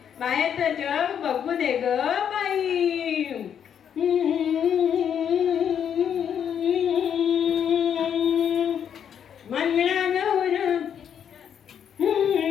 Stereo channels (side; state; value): right; quieter; 8.5 dB